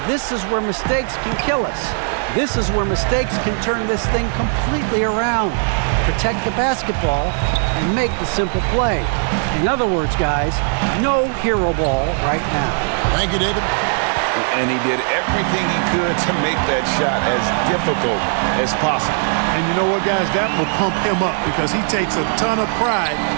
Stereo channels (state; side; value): silent; left; 56 dB below the other